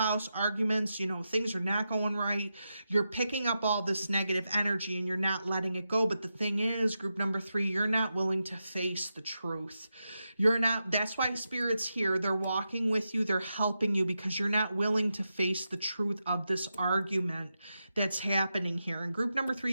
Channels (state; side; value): inverted; both; correlation -0.88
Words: arguments, things are not going right. You're picking up all this negative energy and you're not letting it go. But the thing is, group number 3, you're not willing to face the truth. That's why Spirit's here. They're walking with you. They're helping you because you're not willing to face the truth of this argument that's happening here. And group number 3,